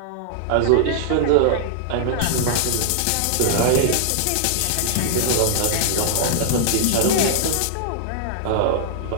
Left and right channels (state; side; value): different; both; correlation -0.01